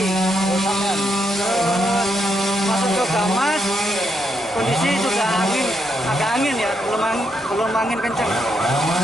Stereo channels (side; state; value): both; normal; correlation 0.79